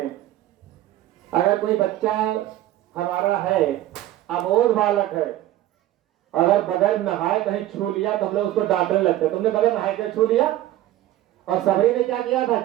अगर कोई बच्चा हमारा है, अबोध बालक है, अगर बगैर नहाए कहीं छू लिया तो हम लोग उसको डांटने लगते हैं, तुमने बगैर नहाए के छू लिया। और सबरी ने क्या किया था?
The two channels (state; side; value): quieter; left; 14.3 dB